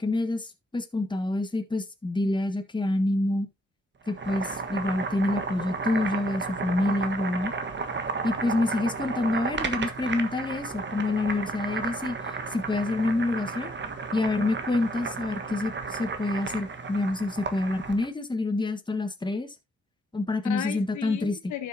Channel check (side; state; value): both; normal; correlation 0.72